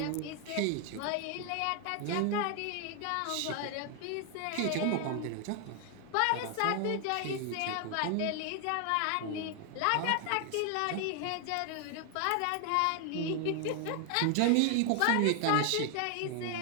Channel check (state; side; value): different; both; correlation 0.00